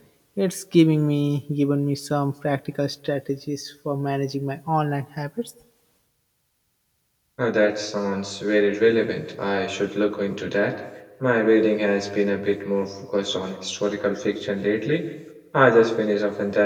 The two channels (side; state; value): both; identical; correlation 1.00